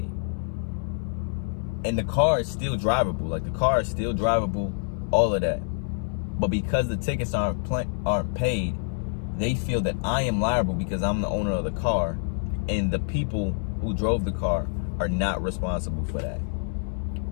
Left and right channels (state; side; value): silent; right; 60 dB below the other